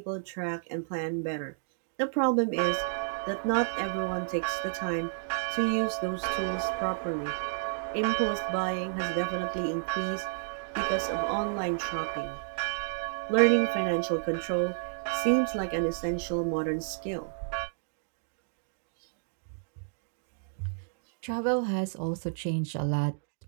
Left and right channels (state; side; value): silent; left; digital silence